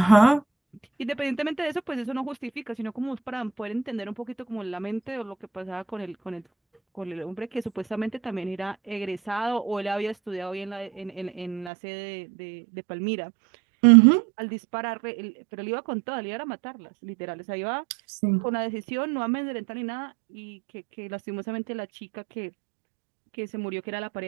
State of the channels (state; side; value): drops out; left; at 11.7 s